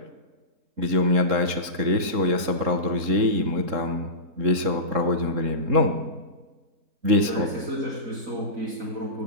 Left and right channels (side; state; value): left; late; 3.7 ms